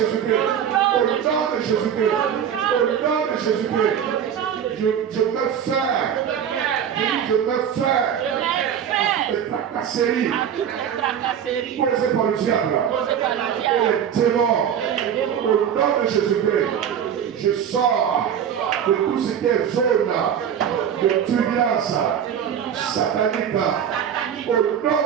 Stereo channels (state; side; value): quieter; left; 8.7 dB